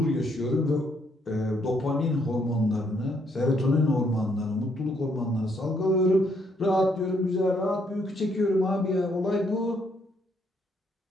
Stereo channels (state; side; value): normal; both; correlation 0.71